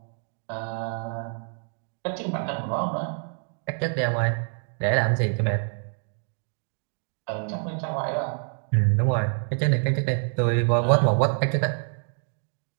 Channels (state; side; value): silent; left; 55 dB below the other